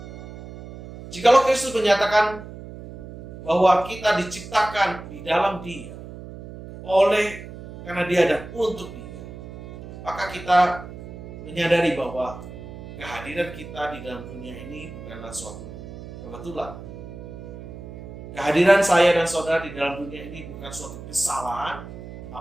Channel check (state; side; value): noise; right; hum, 13 dB below the sound